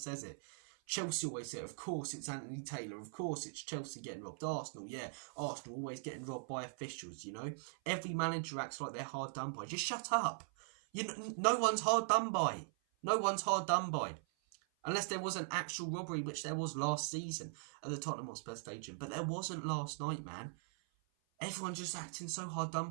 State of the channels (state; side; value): silent; left; 51 dB below the other